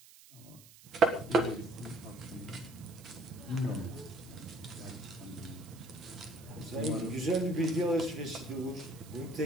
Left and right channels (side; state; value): right; noise; hiss, 21 dB below the sound